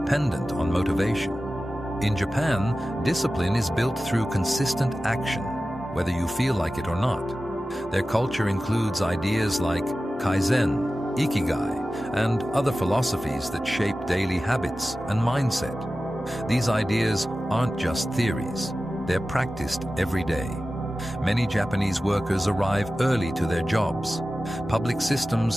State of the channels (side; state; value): both; normal; correlation 0.95